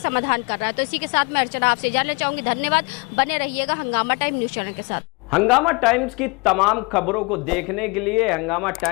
कर रहा है। तो इसी के साथ मैं अर्चना आपसे जानना चाहूंगी। धन्यवाद, बने रहिएगा हंगामा टाइम न्यूज चैनल के साथ। हंगामा टाइम्स की तमाम खबरों को देखने के लिए हंगामा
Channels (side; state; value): right; quieter; 28.9 dB